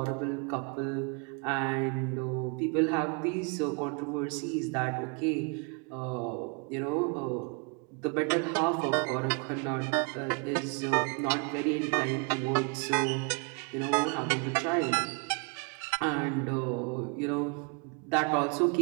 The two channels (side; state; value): left; quieter; 35.3 dB